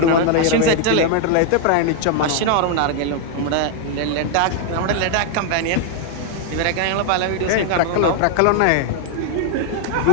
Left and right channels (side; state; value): both; different; correlation 0.00